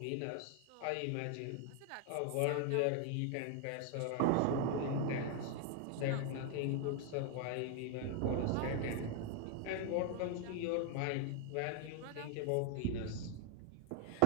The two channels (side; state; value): both; different; correlation 0.00